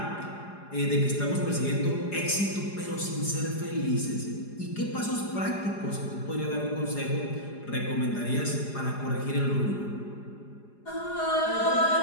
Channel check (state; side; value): late; right; 4.9 ms